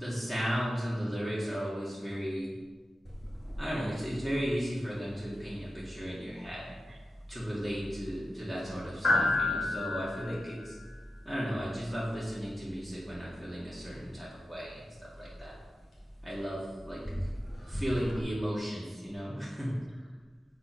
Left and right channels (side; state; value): both; normal; correlation 0.92